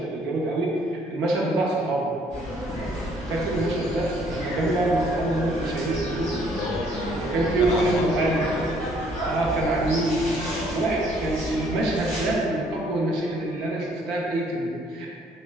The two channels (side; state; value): both; normal; correlation 0.63